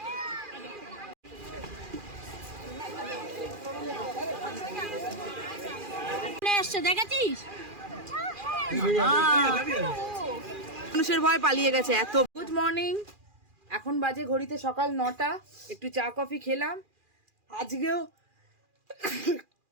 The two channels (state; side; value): late; left; 2.4 ms